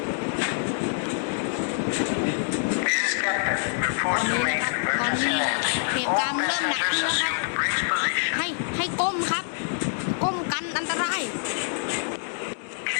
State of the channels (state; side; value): silent; right; digital silence